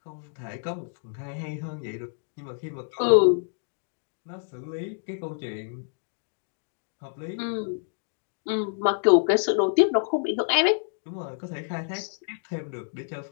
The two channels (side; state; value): right; silent; digital silence